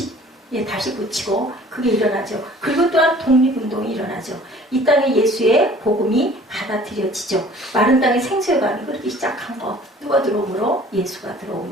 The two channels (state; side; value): normal; both; correlation 0.50